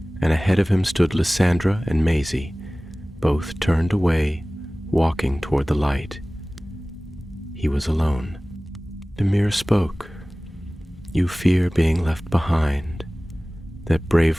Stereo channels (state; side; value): normal; both; correlation 0.98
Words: and ahead of him stood Lysandra and Maisie, both turned away, walking toward the light. He was alone. The mirror spoke. You fear being left behind, that